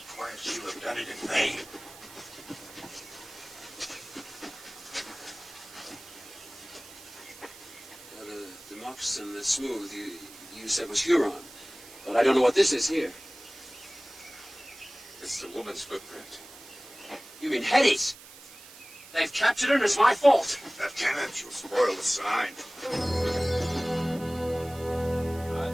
quiet, she'll have done it in vain. The moccasin that's smooth, you said was Huron. But I don't know what this is here. It's the woman's footprint. You mean Hetty's? They've captured her and it's my fault. Lieutenant, you'll spoil the sign.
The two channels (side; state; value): right; noise; hiss, 18 dB below the sound